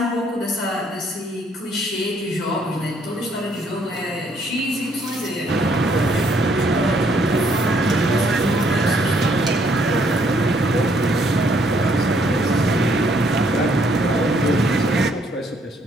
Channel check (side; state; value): both; normal; correlation 0.68